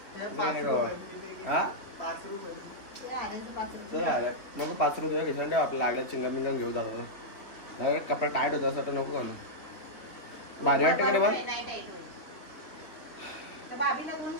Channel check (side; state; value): right; late; 3.6 ms